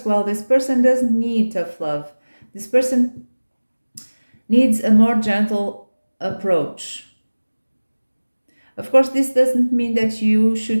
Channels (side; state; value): both; inverted; correlation -1.00